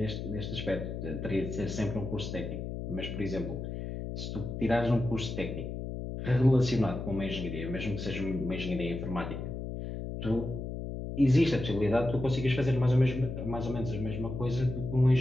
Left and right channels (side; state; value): left; noise; hum, 6 dB below the sound